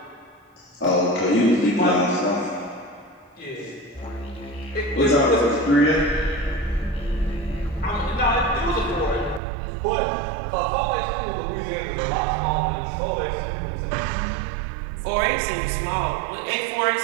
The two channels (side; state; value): left; drops out; at 9.4 s